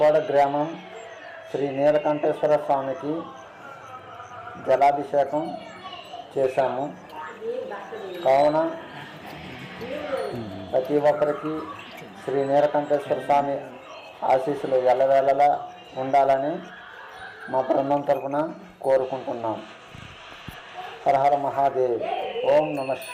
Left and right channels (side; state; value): both; identical; correlation 1.00